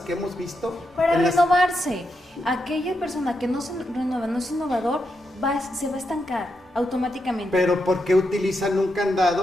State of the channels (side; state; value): both; normal; correlation 0.84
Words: que hemos visto. Para renovarse. Aquella persona que no se renueva, no es innovador, se va a estancar. automáticamente. Pero ¿por qué utilizan un